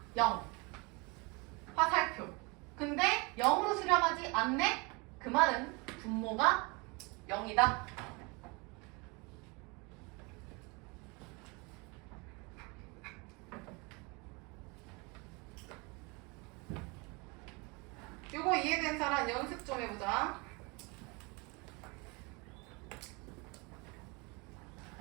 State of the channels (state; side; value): quieter; left; 28.4 dB